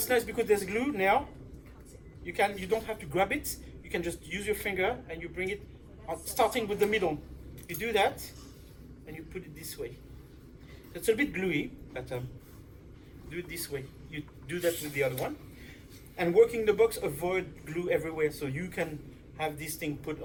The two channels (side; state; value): both; identical; correlation 1.00